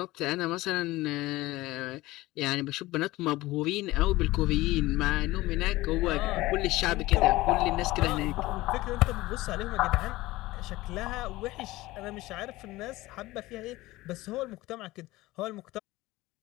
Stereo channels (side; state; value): right; quieter; 18.7 dB